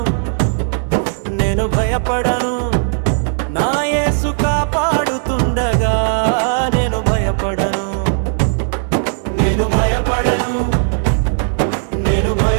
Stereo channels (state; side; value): silent; left; 69 dB below the other